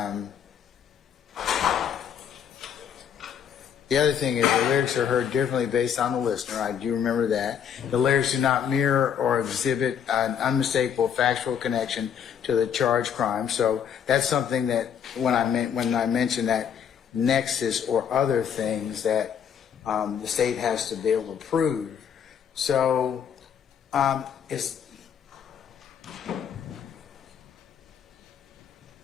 the other thing is the lyrics are heard differently based on the listener. I do remember that. The lyrics do not mirror or exhibit an unmistakable factual connection to the charged crime. So that's something that when I mentioned that nexus or other things that the state has to be able to prove. So it's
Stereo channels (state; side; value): quieter; right; 8.2 dB